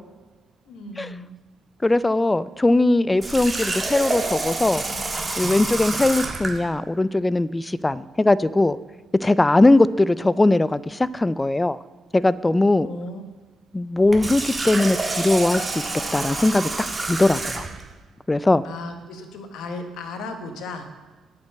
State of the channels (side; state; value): both; normal; correlation 0.97